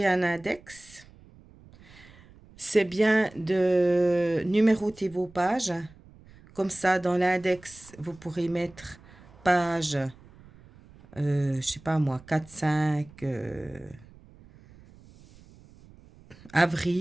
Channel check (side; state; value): right; noise; rumble, 24 dB below the sound